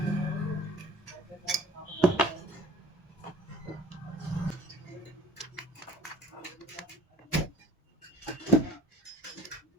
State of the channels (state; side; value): normal; both; correlation 0.46